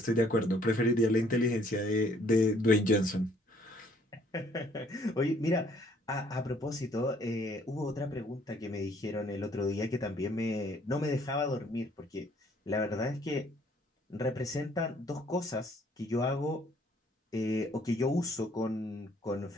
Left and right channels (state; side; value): normal; both; correlation 0.62